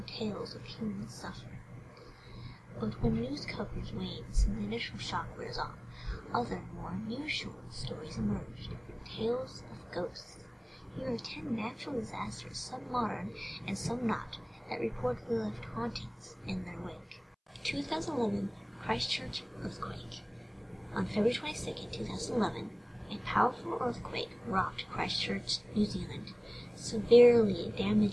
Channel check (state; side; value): identical; both; correlation 1.00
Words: tales of human suffering. But when news coverage wanes and the initial shock wears off, other, more unusual stories emerge, tales of ghosts. Here are 10 natural disasters, some modern and some not, that reportedly left hauntings in their wake. 2011 Christchurch earthquake. On February 22, 2011, a powerful earthquake rocked Christchurch, New Zealand, severely